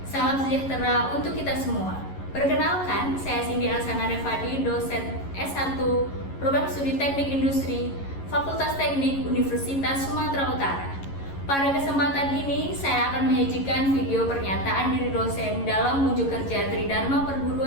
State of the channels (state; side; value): late; right; 11 ms